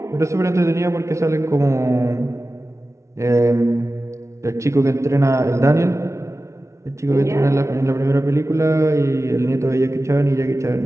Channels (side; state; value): left; late; 0.14 ms